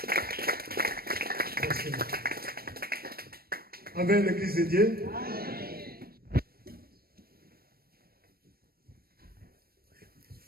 Avec l'Église de Dieu.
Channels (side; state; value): left; late; 0.44 ms